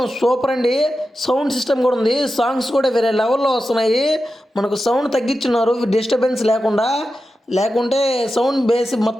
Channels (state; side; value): normal; both; correlation 0.91